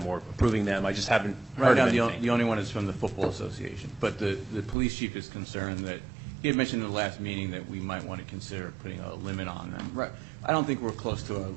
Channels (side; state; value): left; drops out; at 4.8 s